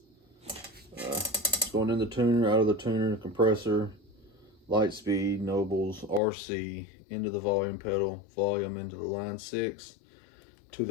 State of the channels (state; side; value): drops out; right; at 6.2 s